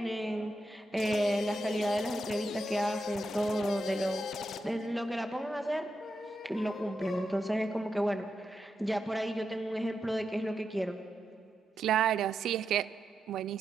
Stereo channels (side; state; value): both; normal; correlation 0.85